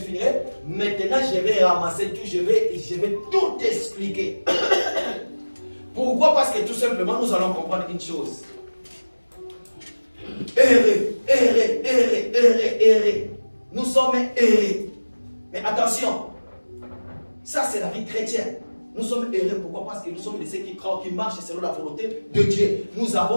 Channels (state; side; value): inverted; both; correlation -1.00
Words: maintenant je vais ramasser tout, je vais tout expliquer. Pourquoi? Parce que tout simplement, nous allons comprendre une chose. Errer, errer, errer, errer, errer. Nous sommes errés. Mais attention, ça c'est la vie chrétienne. Nous sommes errés. Pourquoi? Parce que nous sommes ceux qui croient, qui marchent selon la volonté de Dieu. Nous